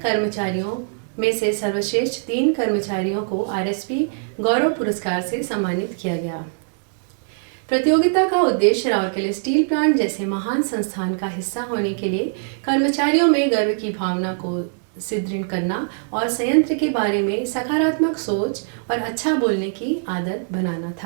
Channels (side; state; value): left; silent; digital silence